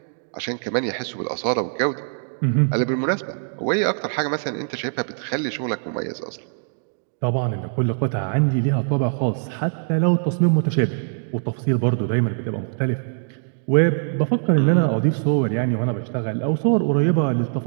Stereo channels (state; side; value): silent; left; digital silence